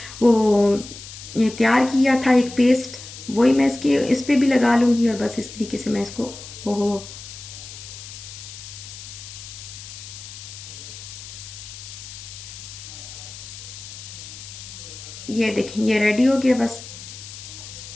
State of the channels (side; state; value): left; noise; hiss, 13 dB below the sound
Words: वो ये तैयार किया था एक पेस्ट, वही मैं इसके इस पे भी लगा लूँगी, और बस इस तरीके से मैं इसको ओहो। ये देखें ये रेडी हो गया बस।